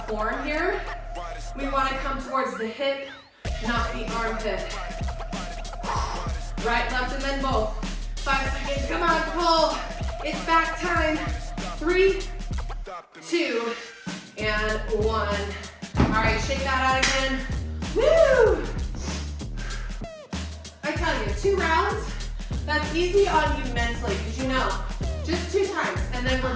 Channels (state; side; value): identical; both; correlation 1.00